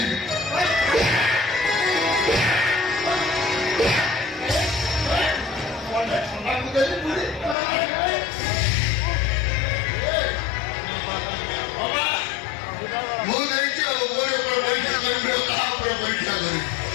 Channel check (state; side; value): drops out; right; at 7.6 s